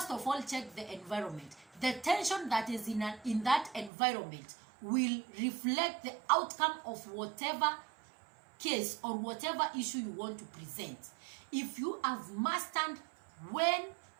of all, check the environment. The tension that is in that environment will reflect the outcome of whatever case or whatever issue you want to present. If you have mastered when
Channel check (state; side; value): drops out; left; at 3.9 s